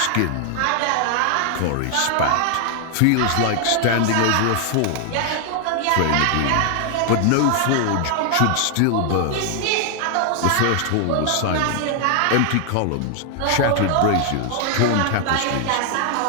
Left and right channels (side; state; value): both; different; correlation 0.00